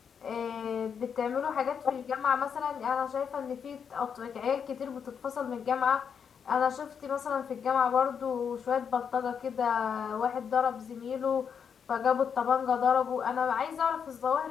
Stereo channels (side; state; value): right; quieter; 7.1 dB